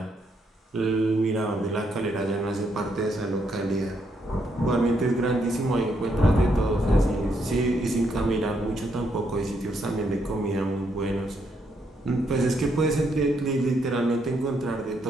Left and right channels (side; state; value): both; normal; correlation 0.76